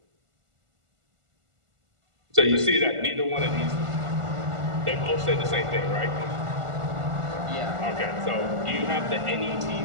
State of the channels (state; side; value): late; left; 1.4 ms